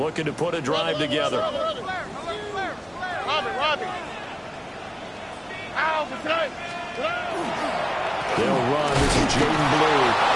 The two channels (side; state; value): both; identical; correlation 1.00